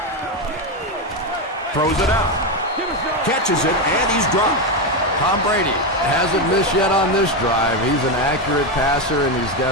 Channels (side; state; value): both; normal; correlation 0.10